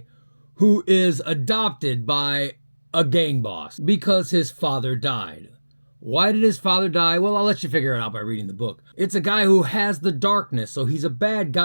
who is adopted by a gang boss because his father died. Why did his father die? Well, I'll let you figure it out by reading the book. It's a guy who has the darkness, so he's a bad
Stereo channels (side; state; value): both; inverted; correlation -1.00